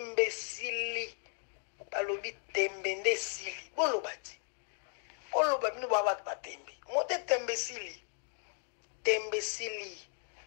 Balobi tembende sili. Bolo bati. Bolo ba minu ba tembe. Mote tembesili. Tembesili.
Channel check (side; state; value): right; silent; 54 dB below the other